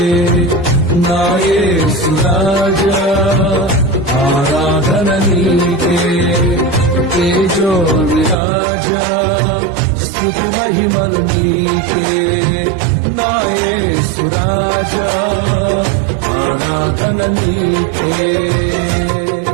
నా యేసు రాజా, ఆరాధన నీకే. తేజో విరాజా స్తుతి మహిమలు నీకే నా యేసు రాజా, ఆరాధన నీకే.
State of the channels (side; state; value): left; drops out; at 8.3 s